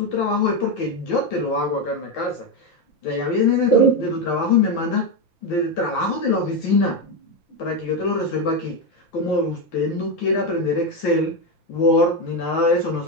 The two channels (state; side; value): late; right; 5.9 ms